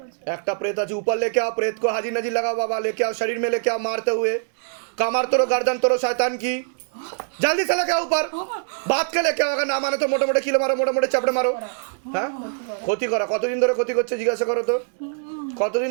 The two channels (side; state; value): left; silent; digital silence